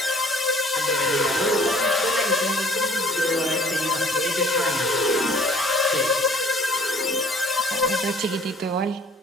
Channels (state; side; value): normal; both; correlation 0.55